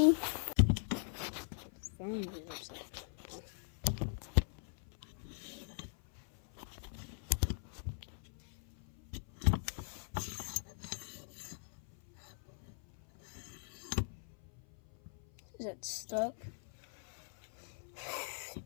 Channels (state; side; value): silent; right; 51 dB below the other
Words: Phone is upside down. Is that stuck? That